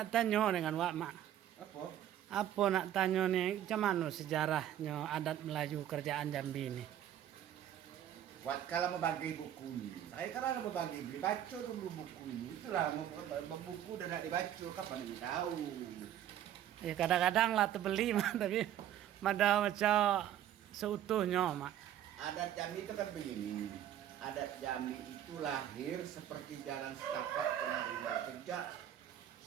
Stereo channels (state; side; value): quieter; left; 11.1 dB